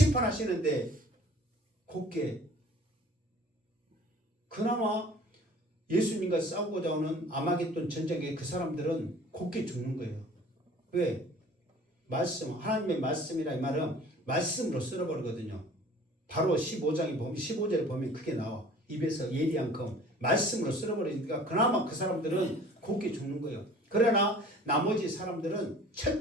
곱게 그나마 예수님과 싸우고자 하는 아마겟돈 전쟁에 그 사람들은 곱게 죽는 거예요. 왜? 말씀, 하나님의 말씀이라 이 말은 말씀으로 쓸어버리거든요. 바로 15절에 보면 그게 나와. 입에서 예리한 검. 말씀으로 쓸어버리니까 그나마 그 사람들은 곱게 죽는 거예요. 그러나 나머지 사람들은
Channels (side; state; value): both; normal; correlation 0.48